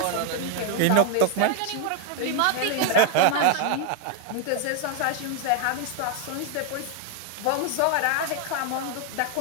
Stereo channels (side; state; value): both; different; correlation 0.00